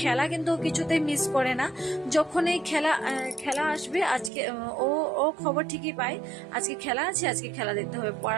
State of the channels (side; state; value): left; drops out; at 4.3 s